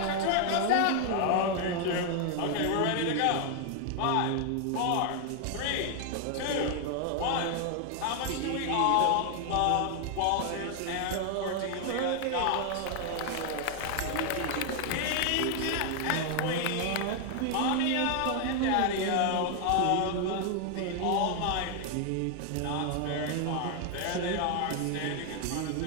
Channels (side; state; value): both; different; correlation 0.00